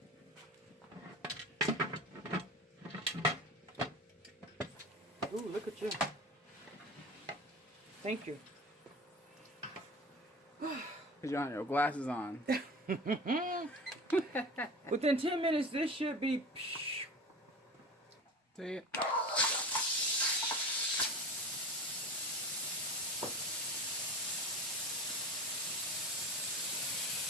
Ooh, look at you. Thank you. Because you don't have your glasses on. Within 10 minutes, this should be... See it?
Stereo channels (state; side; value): normal; both; correlation 0.33